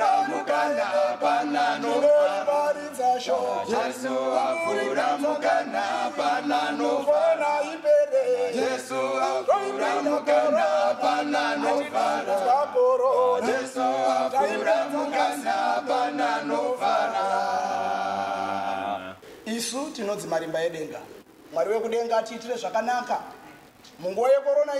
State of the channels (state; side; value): identical; both; correlation 1.00